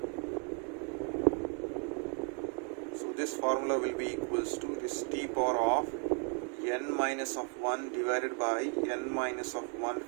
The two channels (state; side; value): quieter; left; 38.9 dB